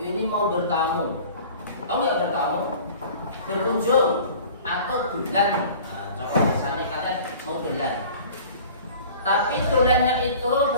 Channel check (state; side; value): inverted; both; correlation -0.44